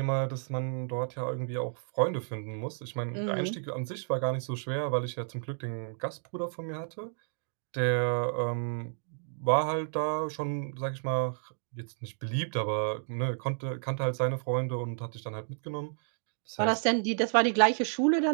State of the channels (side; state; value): left; silent; digital silence